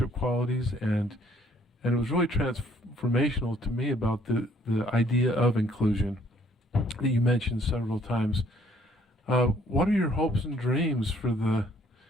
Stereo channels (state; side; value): normal; both; correlation 0.63